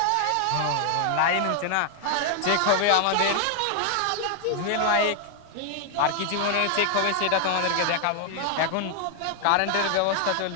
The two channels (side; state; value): both; different; correlation 0.00